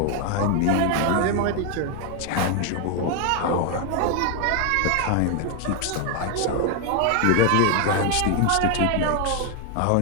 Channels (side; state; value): both; different; correlation 0.01